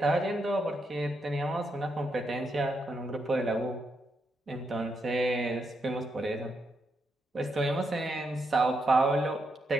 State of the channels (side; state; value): both; normal; correlation 0.81